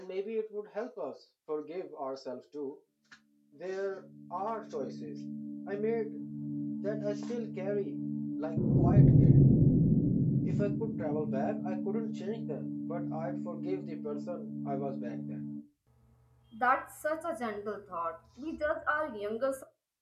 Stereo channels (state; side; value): identical; both; correlation 1.00